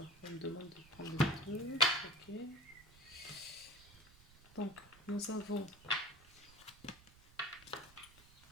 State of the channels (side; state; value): right; noise; rumble, 23 dB below the sound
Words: on me demande de prendre le truc. Ok. Donc nous avons